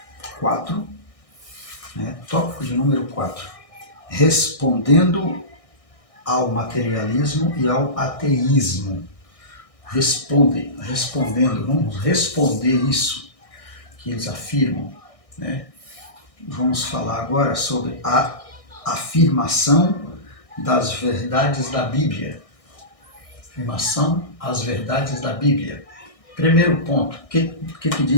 4, tópico de número 4, respondendo ao materialismo e ao ateísmo. Respondendo, vamos responder isso que eles afirmam, né? Vamos falar agora sobre a afirmação das verdades da Bíblia. Afirmação às verdades da Bíblia. Primeiro ponto, o que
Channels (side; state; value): right; late; 1.6 ms